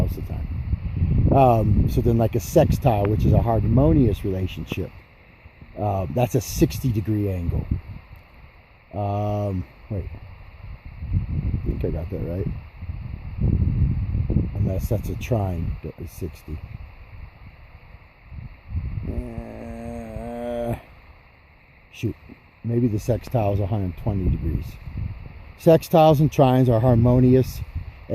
of the time. So then, like a sextile, which is a harmonious relationship, that's a 60-degree angle. Wait, I think I got that right, unless that's a trine that is 60. Shoot, maybe the sextile is 120 degrees. Sextiles and trines are harmonious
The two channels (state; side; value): identical; both; correlation 1.00